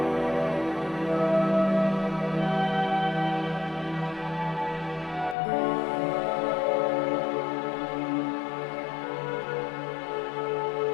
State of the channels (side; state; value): right; drops out; at 5.4 s